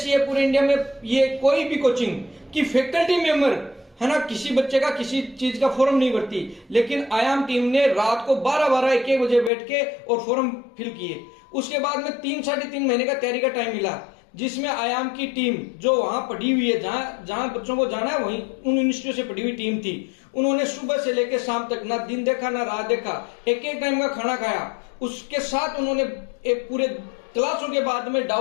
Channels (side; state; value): right; drops out; at 9.5 s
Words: है पूरे इंडिया में, ये कोई भी कोचिंग की फैकल्टी मेंबर है ना, किसी बच्चे का किसी चीज का फॉर्म नहीं भरती, लेकिन आयाम टीम ने रात को 12-12, 1-1 बजे बैठ के और फॉर्म फिल किए। उसके बाद में 3-3.5 महीने का तैयारी का टाइम मिला, जिसमें आयाम की टीम जो वहां पढ़ी हुई है, जहां बच्चों को जाना है वहीं उन यूनिवर्सिटियों से पढ़ी हुई टीम थी। उन्होंने सुबह से लेकर शाम तक ना दिन देखा ना रात देखा, एक एक टाइम का खाना खाया। उसके साथ उन्होंने एक पूरे क्लासों के बाद में